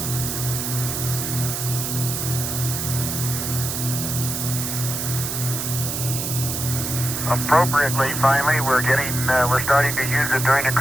Appropriately, finally, we're starting to use it during the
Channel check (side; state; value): right; noise; hiss, 3 dB below the sound